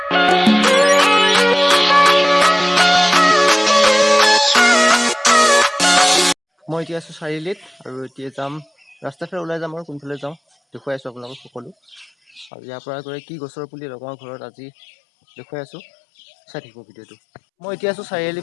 মই এতিয়া আছো চাৰিআলিত আৰু এতিয়া যাম ৰাস্তাৰ ফালে ওলাই যাম আৰু কোনফালে যাওঁ দেখুৱাই আছো আপোনালোকক সকলো। আৰু ইয়াৰ পৰা গৈ কি গছৰ পুলি লগাওঁ ঘৰত আজি দেখুৱাই আছো, চাই থাকিব ভিডিঅ'টো। মই এতিয়া আছো চাৰিআলি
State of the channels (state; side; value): drops out; right; at 12.5 s